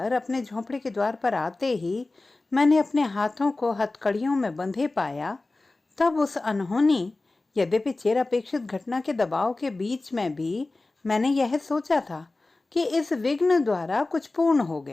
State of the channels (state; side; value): quieter; right; 3.2 dB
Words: अपने झोंपड़े के द्वार पर आते ही मैंने अपने हाथों को हथकड़ियों में बंधे पाया, तब उस अनहोनी यद्यपि चिर अपेक्षित घटना के दबाव के बीच में भी मैंने यह सोचा था कि इस विघ्न द्वारा कुछ पूर्ण हो